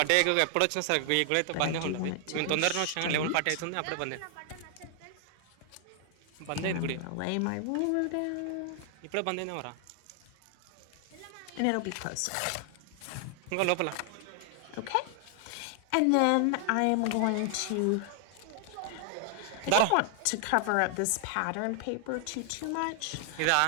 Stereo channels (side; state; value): both; different; correlation 0.00